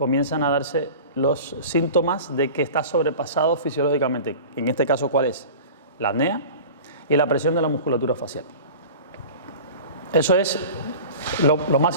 a darse los síntomas de que está sobrepasado fisiológicamente. En este caso, ¿cuál es? La apnea y la presión de la musculatura facial. Eso es lo más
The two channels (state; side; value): inverted; both; correlation -0.37